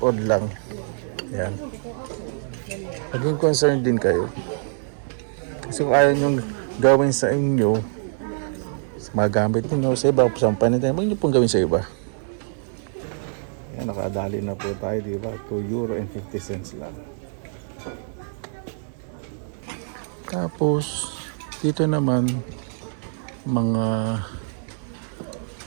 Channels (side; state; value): left; silent; digital silence